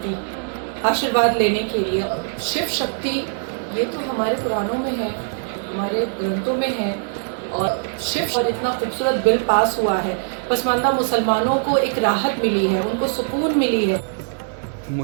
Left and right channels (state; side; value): silent; left; digital silence